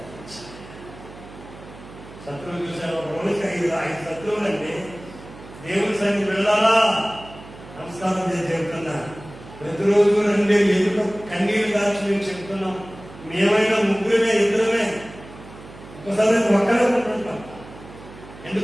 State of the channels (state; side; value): noise; right; hum, 18 dB below the sound